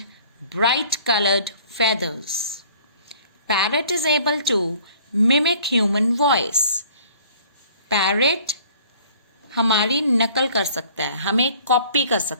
bright colored feathers. Parrot is able to mimic human voice. Parrot हमारी नकल कर सकता है, हमें कॉपी कर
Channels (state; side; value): inverted; both; correlation -0.54